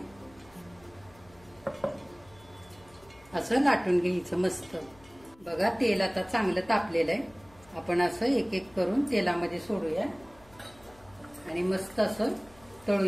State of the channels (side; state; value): left; noise; hum, 27 dB below the sound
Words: असं लाटून घ्यायचं मस्त. बघा तेल आता चांगलं तापलेलं आहे. आपण असं एक एक करून तेलामध्ये सोडूया आणि मस्त असं